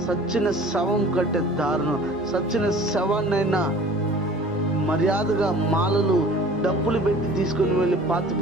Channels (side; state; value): both; normal; correlation 0.46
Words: సచ్చిన శవం కంటే దారుణం. సచ్చిన శవాన్నైనా మర్యాదగా మాలలు డబ్బులు పెట్టి తీసుకుని వెళ్ళి పాతి